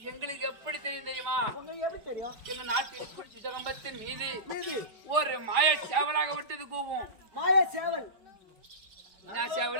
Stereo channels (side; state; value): left; late; 4.9 ms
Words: எங்களுக்கு எப்படி தெரியுமா? எங்க நாட்டில் சிதகம்பத்தின் மீது ஒரு மாய சேவலாகப்பட்டது கூவும். மாய சேவல்.